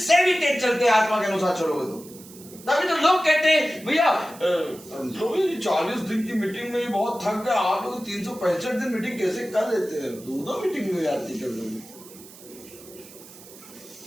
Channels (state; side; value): noise; right; hiss, 19 dB below the sound